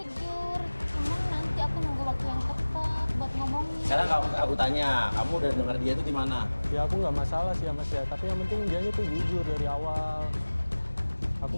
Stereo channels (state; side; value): inverted; both; correlation -1.00